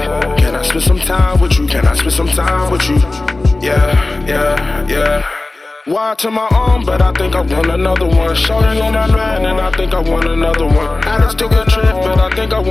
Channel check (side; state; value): right; quieter; 3.1 dB